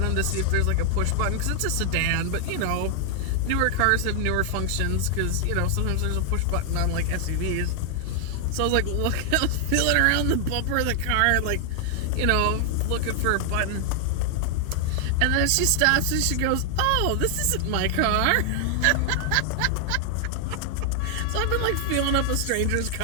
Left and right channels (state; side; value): different; both; correlation 0.00